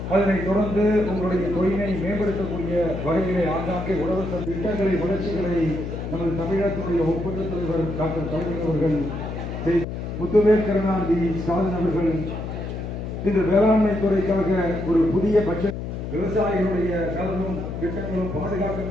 அதனைத் தொடர்ந்து உங்களுடைய தொழிலை மேம்படுத்தக்கூடிய வகையிலே ஆங்காங்கே உழவு திட்டங்களை வளர்ச்சிகளை நமது தமிழகத்தினுடைய ஒப்பந்த தலைவர் டாக்டர் கலைஞர் அவர்கள், முத்துவேல் கருணாநிதி ஸ்டாலின் அவர்கள் இந்த வேளாண்மை துறைக்காக ஒரு புதிய பட்ஜெட், விவசாயிகளுடைய நலனும் திட்டங்களும்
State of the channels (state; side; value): noise; left; hum, 6 dB below the sound